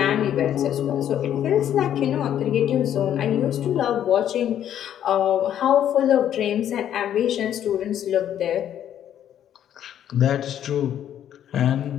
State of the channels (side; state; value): right; quieter; 10.4 dB